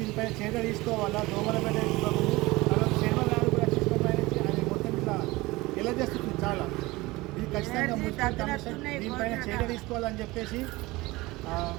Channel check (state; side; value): quieter; left; 21.0 dB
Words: దీనిపై చర్య తీసుకోవాలా. దోమల బెడ్డ చర్మగారు కూడా చిన్నపైన అది మొత్తం ఇట్లా ఎలా చేస్తుంది చాలా. ఇది ఖచ్చితంగా మున్సిపల్ కమిషన్ దీనిపైన చర్య తీసుకోవాలని చెప్పేసి